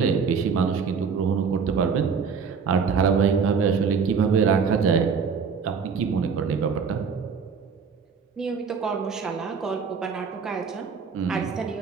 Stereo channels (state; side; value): quieter; left; 5.9 dB